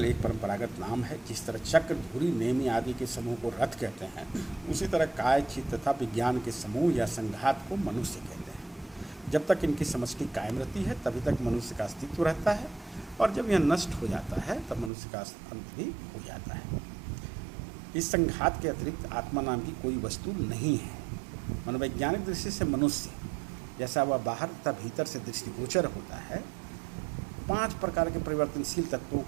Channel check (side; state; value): left; drops out; at 14.9 s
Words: एक परंपरागत नाम है। जिस तरह चक्र, धुरी, नेमी आदि के समूह को रथ कहते हैं, उसी तरह काय, चित्त तथा विज्ञान के समूह या संघात को मनुष्य कहते हैं। जब तक इनकी समष्टि कायम रहती है तभी तक मनुष्य का अस्तित्व रहता है, और जब यह नष्ट हो जाता है तब मनुष्य का अंत भी हो जाता है। इस संघात के अतिरिक्त आत्मा नाम की कोई वस्तु नहीं है। मनोवैज्ञानिक दृष्टि से मनुष्य जैसा वह बाहर तथा भीतर से दृष्टिगोचर होता है, 5 प्रकार के परिवर्तनशील तत्वों